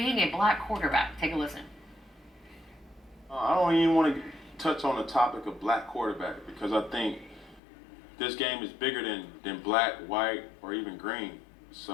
a black quarterback. Take a listen. I don't even want to touch on the topic of black quarterback because I think this game is bigger than black, white, or even green.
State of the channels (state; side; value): drops out; right; at 7.6 s